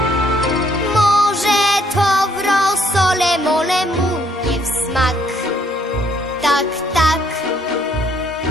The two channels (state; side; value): normal; both; correlation 0.68